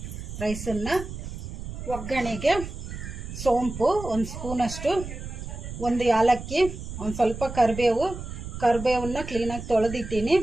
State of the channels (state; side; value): noise; right; rumble, 9 dB below the sound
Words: ರೈಸನ್ನು. ಒಗ್ಗರಣೆಗೆ ಸೋಂಪು 1 ಸ್ಪೂನಷ್ಟು, ಒಂದು ಯಾಲಕ್ಕಿ, ಒಂದು ಸ್ವಲ್ಪ ಕರಿಬೇವನ್ನ ಕ್ಲೀನಾಗಿ ತೊಳೆದಿಟ್ಟಿನಿ,